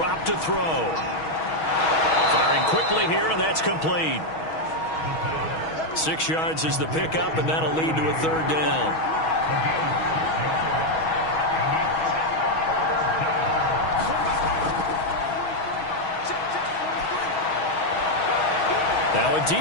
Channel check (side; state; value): right; late; 6.3 ms